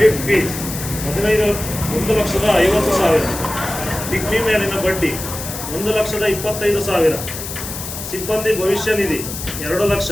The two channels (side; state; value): left; noise; hiss, 8 dB below the sound